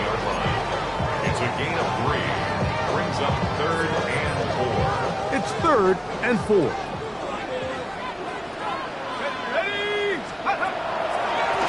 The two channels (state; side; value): identical; both; correlation 1.00